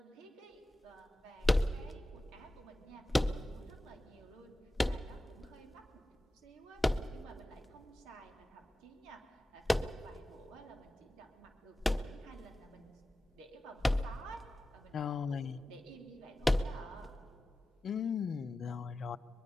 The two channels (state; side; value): normal; both; correlation 0.94